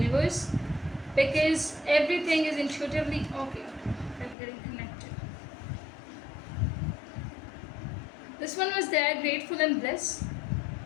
because everything is intuitively okay. I'm getting connected. This one was there, grateful and bliss.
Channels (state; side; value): drops out; right; at 4.4 s